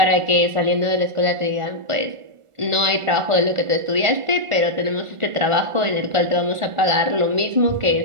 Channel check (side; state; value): left; late; 1.4 ms